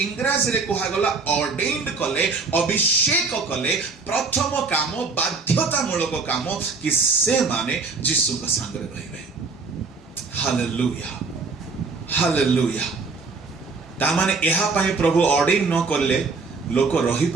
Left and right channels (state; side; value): quieter; left; 4.3 dB